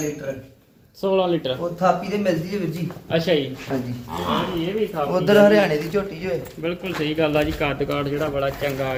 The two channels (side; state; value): both; identical; correlation 1.00